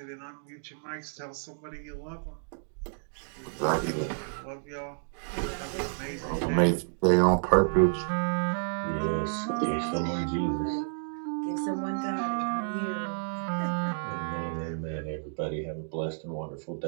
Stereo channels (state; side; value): silent; left; digital silence